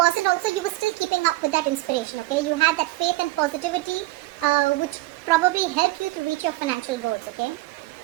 also, you were still keeping up with that inspiration, okay? You had that faith and positivity, which probably helped you to reach your financial goals, okay?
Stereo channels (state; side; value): quieter; left; 19.3 dB